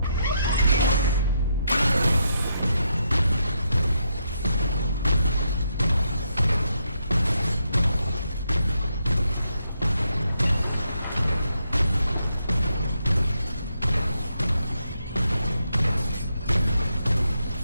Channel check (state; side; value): inverted; both; correlation -0.80